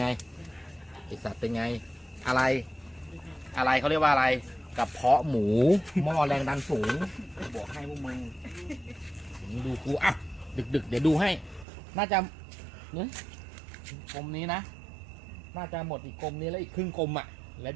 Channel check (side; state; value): left; drops out; at 11.7 s